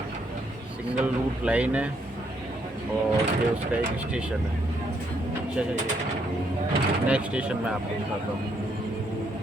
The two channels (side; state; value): both; normal; correlation 0.73